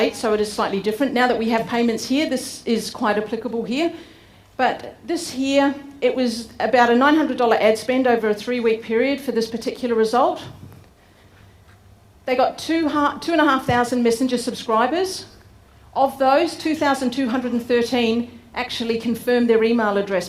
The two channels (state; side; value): identical; both; correlation 1.00